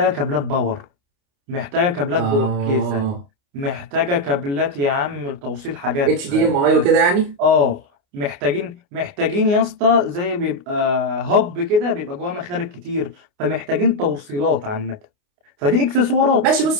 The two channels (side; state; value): left; late; 29 ms